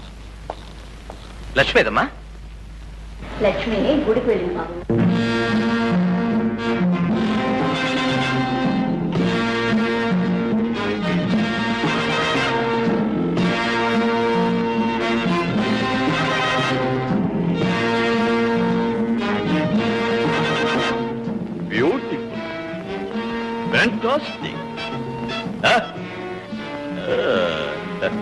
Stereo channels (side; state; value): both; identical; correlation 1.00